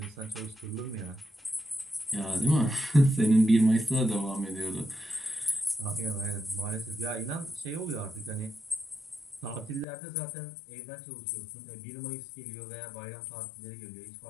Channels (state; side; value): drops out; right; at 9.9 s